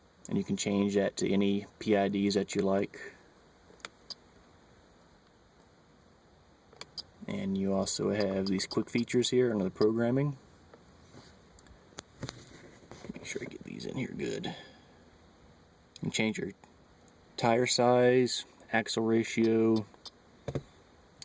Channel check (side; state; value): both; identical; correlation 1.00